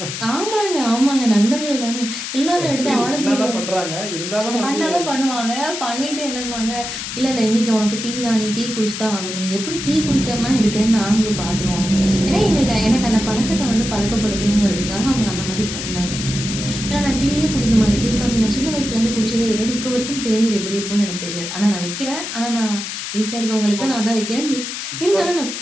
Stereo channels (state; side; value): noise; left; hiss, 6 dB below the sound